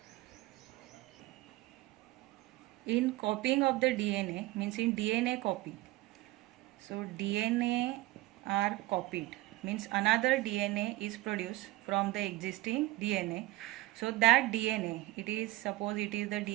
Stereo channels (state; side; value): quieter; left; 18.5 dB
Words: In copying of the DNA, means in DNA copy. So DNA are copied, means another DNA is produced from the existing DNA. So that DNA, suppose it is the